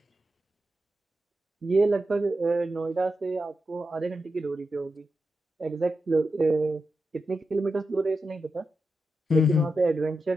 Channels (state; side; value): normal; both; correlation 0.89